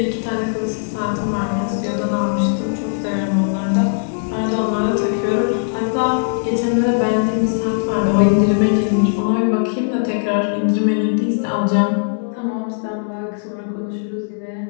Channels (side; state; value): right; silent; digital silence